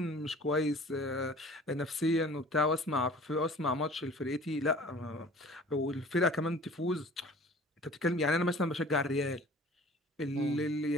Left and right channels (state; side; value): normal; both; correlation 0.46